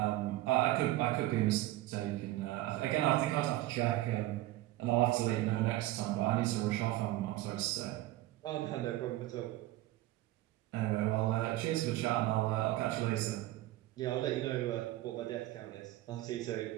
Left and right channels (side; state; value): left; quieter; 16.3 dB